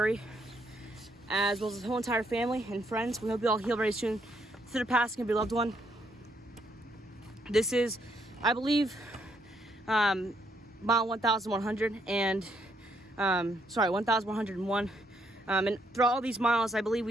as well as the whole entire family and friends, we hope you all heal very soon through the passing of your loved one. This is, I believe, mile 1,100 and 1,101. And throughout all these miles, I believe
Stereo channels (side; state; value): both; normal; correlation 0.73